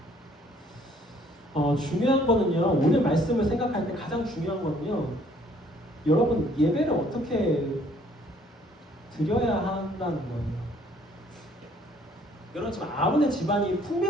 중요한 거는요, 오늘 말씀을 생각할 때 가장 중요한 거는요, 여러분 예배를 어떻게 드려야 한다는 거예요. 여러분 지금 아론의 집안이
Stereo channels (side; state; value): both; normal; correlation 0.61